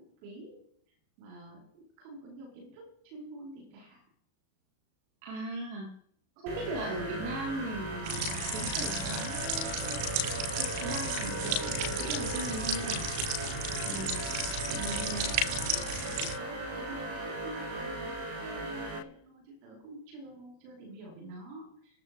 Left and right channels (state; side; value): late; left; 37 ms